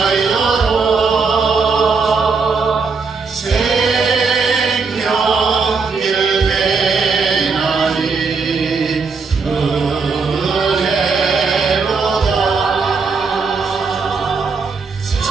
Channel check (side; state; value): left; quieter; 4.8 dB